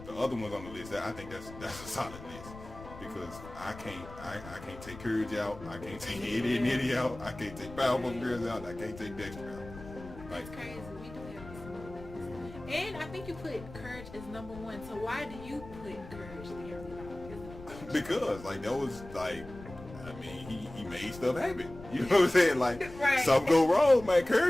the other ones on the list, I think that's a solid list because I can't take Courage out, I can't take Ed, and Eddy out, I can't take Powerpuff Girls out, I can't take Dexter out. Like, that's crazy. We do have some. And I think you put Courage as number 1. So why do you put Courage the Cowardly Dog? Because like that was like. I mean, he made stuff happen. You know what I'm saying? Like, right. Something go wrong, man.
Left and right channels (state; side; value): noise; left; rumble, 15 dB below the sound